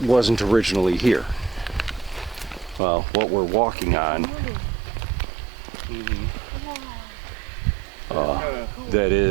wasn't originally here. Well, what we're walking on, that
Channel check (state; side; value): drops out; left; at 2.8 s